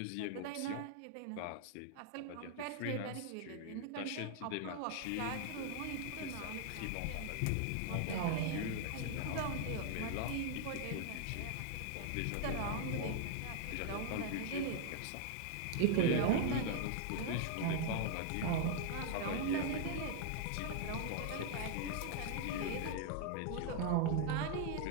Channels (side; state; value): both; different; correlation 0.00